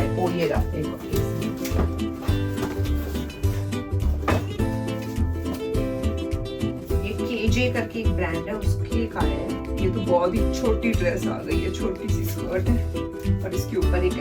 है. ओ ये रहा एक और. ये KJ करके एक ब्रांड है, उसकी एक आया है. ये तो बहुत ही छोटी ड्रेस आ गई है, छोटी सी स्कर्ट है और इसके ऊपर एक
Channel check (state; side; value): identical; both; correlation 1.00